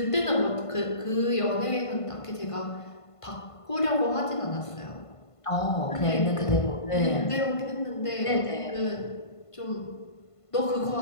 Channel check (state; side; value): late; right; 1.5 ms